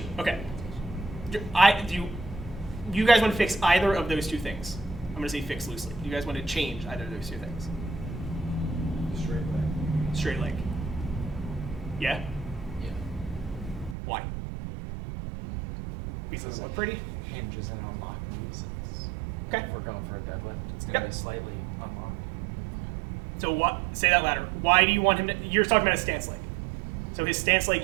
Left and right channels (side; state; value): left; drops out; at 14.0 s